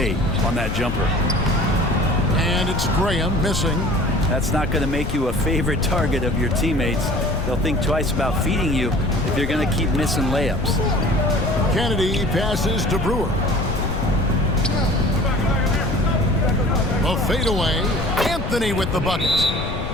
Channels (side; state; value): left; noise; rumble, 5 dB below the sound